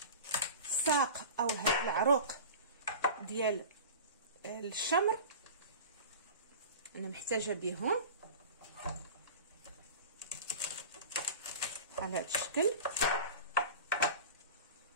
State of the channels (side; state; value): both; inverted; correlation -0.35